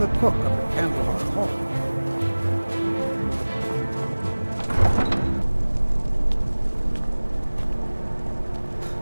cook of the Candlehearth Hall.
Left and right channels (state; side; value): inverted; both; correlation -1.00